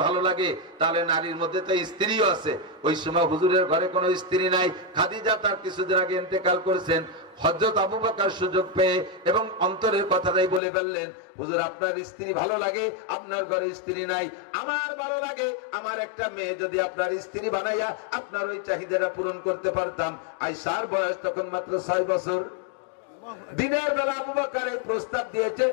ভালো লাগে, তাহলে নারীর মধ্যে তো স্ত্রীও আছে। ওই সময় হুজুরের ঘরে কোনো স্ত্রী নাই। খাদিজা তার কিছুদিন আগে ইন্তেকাল করেছেন। হযরত আবু বকর সুযোগ পেয়ে এবং অন্তরের কথাটাই বলে ফেললেন, হুজুর আপনার স্ত্রী ভালো লাগে, আপনার ঘরে স্ত্রী নাই, আমার ভালো লাগে আমার একটা মেয়ে যদি আপনার স্ত্রী বানাইয়া আপনার ওই চাহিদাটা পূরণ করতে পারতাম। আয়েশার বয়স তখন মাত্র 6 বছর। দিনের বেলা আবু বকর এই প্রস্তাব দিয়েছে,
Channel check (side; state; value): right; drops out; at 10.6 s